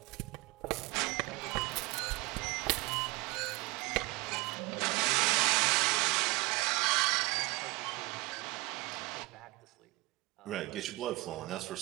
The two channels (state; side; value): quieter; left; 23.4 dB